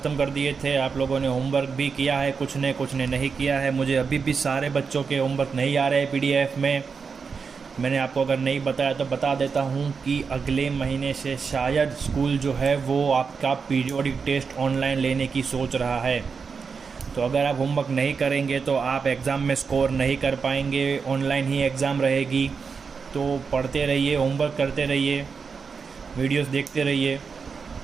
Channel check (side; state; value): left; quieter; 5.5 dB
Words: कर दिए थे। आप लोगों ने होमवर्क भी किया है, कुछ ने नहीं किया है। मुझे अभी भी सारे बच्चों के होमवर्क नहीं आ रहे PDF में। मैंने आपको अगर नहीं बताया तो बता देता हूँ कि अगले महीने से शायद स्कूल जो है वो आपका पीरियोडिक टेस्ट ऑनलाइन लेने की सोच रहा है। तो अगर आप होमवर्क नहीं करेंगे तो आप एग्ज़ाम में स्कोर नहीं कर पाएंगे। ऑनलाइन ही एग्ज़ाम रहेगी, तो पढ़ते रहिए, होमवर्क करते रहिए, वीडियोस देखते रहिए।